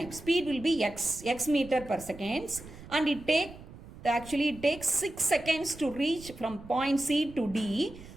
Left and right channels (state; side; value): noise; right; rumble, 17 dB below the sound